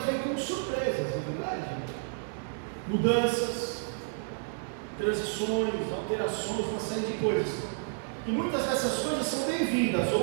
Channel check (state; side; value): silent; left; 57 dB below the other